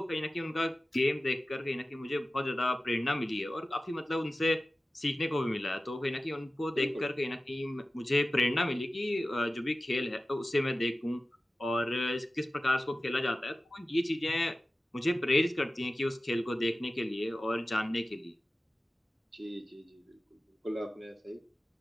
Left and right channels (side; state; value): both; normal; correlation 0.95